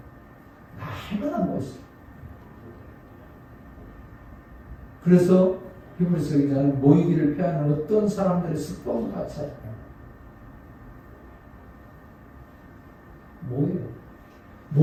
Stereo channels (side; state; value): both; identical; correlation 1.00